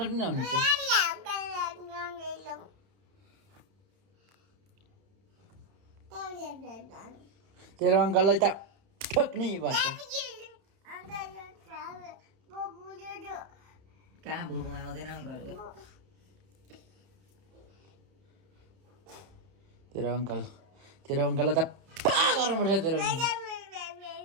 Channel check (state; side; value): late; left; 31 ms